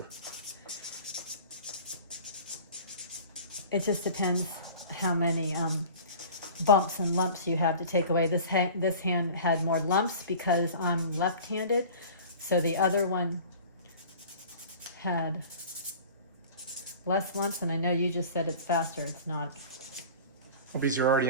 It just depends how many bumps and lumps you have to take away. This hand had more lumps because I'm left-handed, so the other one had less lumps, and I know you just said it's faster. It's not. Well, because you're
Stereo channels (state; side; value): inverted; both; correlation -0.41